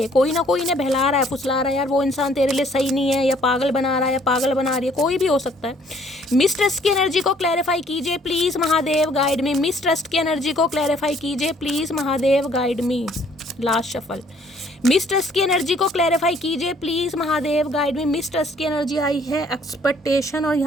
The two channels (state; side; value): normal; both; correlation 0.61